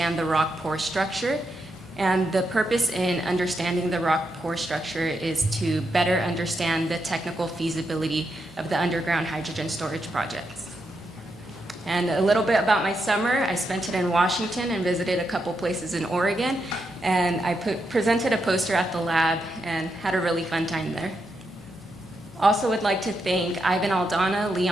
the rock pore structure. And the purpose in understanding the rock pore structure is to better understand the technical feasibility of the underground hydrogen storage projects. And a little bit about my summer. I spent it in Washington and visited a couple places in Oregon. And I presented a poster at the lab and had a really fun time there. Also would like to thank Ivan Aldana,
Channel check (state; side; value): normal; both; correlation 0.83